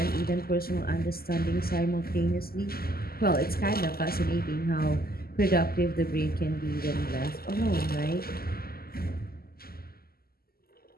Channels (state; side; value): late; right; 0.44 ms